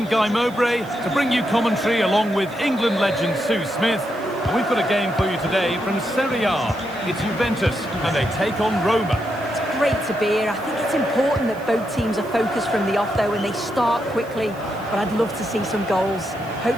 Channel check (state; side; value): noise; right; hiss, 25 dB below the sound